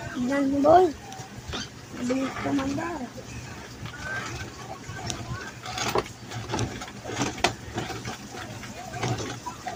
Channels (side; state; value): both; identical; correlation 1.00